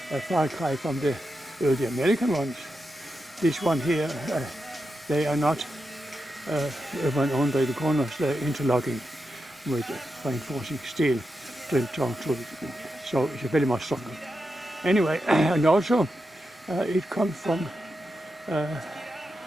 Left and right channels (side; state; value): both; normal; correlation 0.88